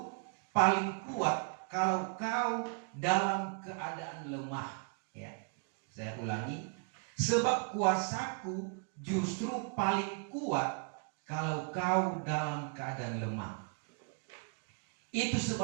paling kuat kalau kau dalam keadaan lemah." Ya, saya ulangi. Sebab kuasaku justru paling kuat kalau kau dalam keadaan lemah. Itu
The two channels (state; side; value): quieter; left; 39.9 dB